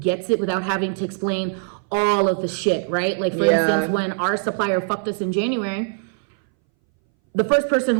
it without having to explain all of the shit, right? Like, for instance, when our supplier fucked us in January, the first person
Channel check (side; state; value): left; silent; 62 dB below the other